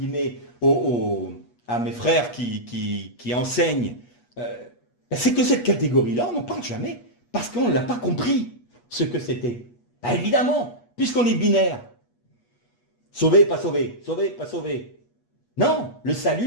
à mes frères qui enseignent, c'est que cette catégorie-là, on n'en parle jamais, parce qu'on ne l'a pas compris, ce que c'était. Évidemment, puisqu'on est binaire. Sauvé, pas sauvé, sauvé, pas sauvé. Non, le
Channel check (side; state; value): right; late; 8.3 ms